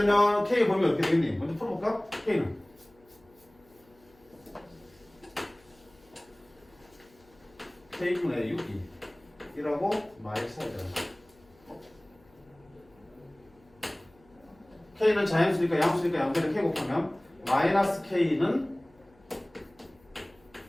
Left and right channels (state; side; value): noise; left; hum, 30 dB below the sound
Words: K의 범위 어떻게 되겠니? 먼저 풀어볼까? K는 K분의 6이 1하고 마이너스 4잖아. K는 자연수니까 양수니까 양변에 K 곱하면 마이너스 K는